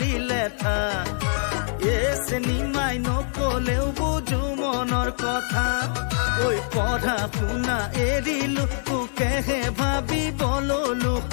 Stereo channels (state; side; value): silent; right; digital silence